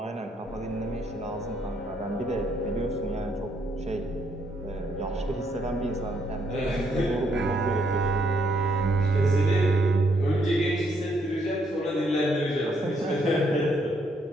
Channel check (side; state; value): both; normal; correlation 0.72